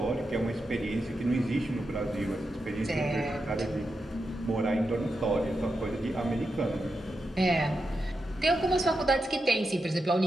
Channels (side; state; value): both; normal; correlation 0.87